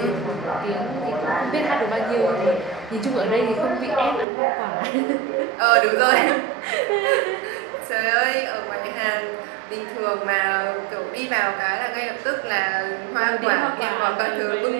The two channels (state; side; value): drops out; left; at 4.2 s